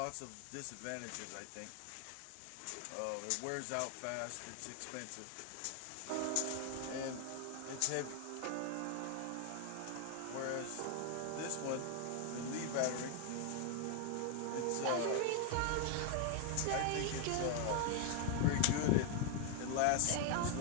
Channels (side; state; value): both; different; correlation 0.00